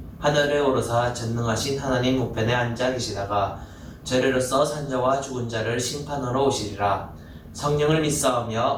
하늘에 오르사 전능하신 하나님 우편에 앉아 계시다가 저리로서 산자와 죽은 자를 심판하러 오시리라. 성령을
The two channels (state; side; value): identical; both; correlation 1.00